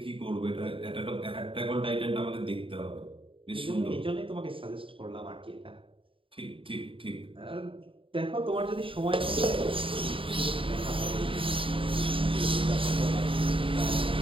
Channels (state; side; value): late; left; 0.25 ms